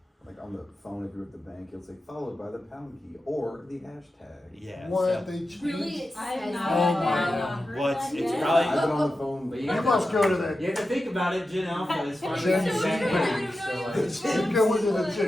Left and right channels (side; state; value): both; normal; correlation 0.92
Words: like on the phone, if you're at the bank, it'll say followed by the pound key or the hashtag. Yeah. What, so- they changed? Really, it I've says not Oh that. my heard God. that Well, it's yet. probably- I've been on the phone. But You you must go to that, You have to think about it, Gen Alpha is Gen finally Z back bank. now, so like. you go into the